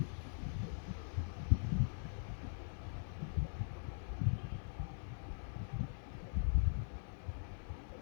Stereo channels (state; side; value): silent; right; digital silence